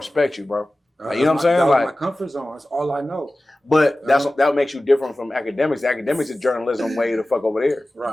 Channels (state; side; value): normal; both; correlation 0.96